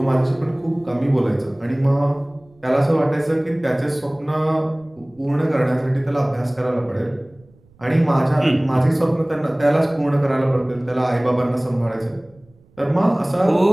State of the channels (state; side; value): noise; right; rumble, 29 dB below the sound